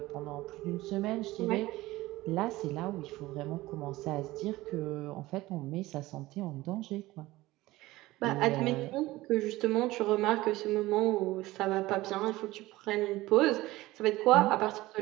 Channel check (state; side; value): quieter; left; 18.3 dB